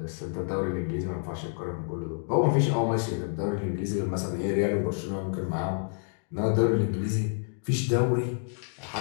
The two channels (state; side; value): silent; right; digital silence